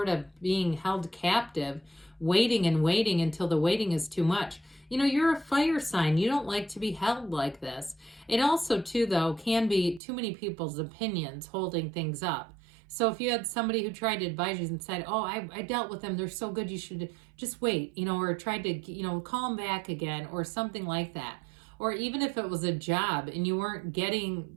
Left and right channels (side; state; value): left; drops out; at 10.0 s